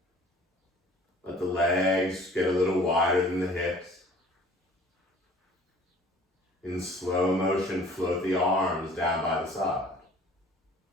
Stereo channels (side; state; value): both; normal; correlation 0.51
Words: let the legs get a little wider than the hips. In slow motion, float the arms down by the side.